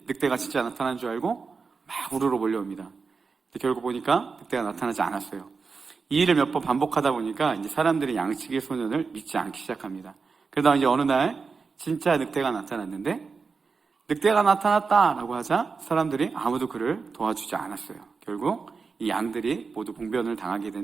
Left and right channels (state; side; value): quieter; left; 4.9 dB